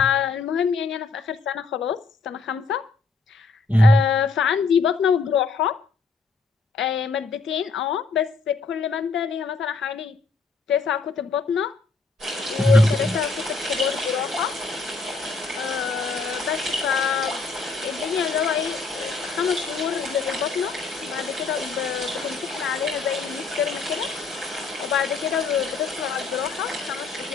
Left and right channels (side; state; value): right; quieter; 4.1 dB